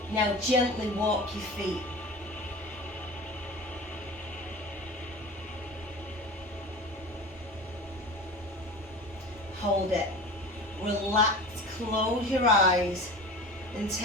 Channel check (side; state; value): both; normal; correlation 0.35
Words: Now gently walk your feet. Hold it. Relax, close your eyes and